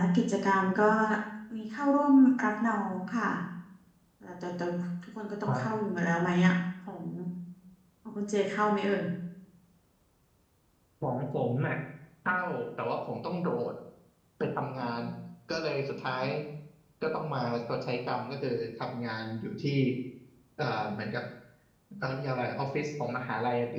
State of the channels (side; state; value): both; identical; correlation 1.00